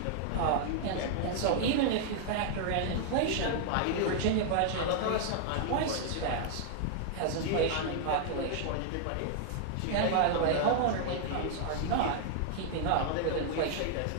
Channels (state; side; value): different; both; correlation -0.01